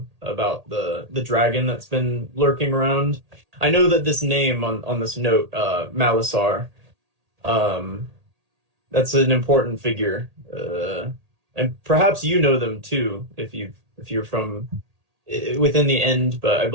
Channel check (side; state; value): left; late; 1.8 ms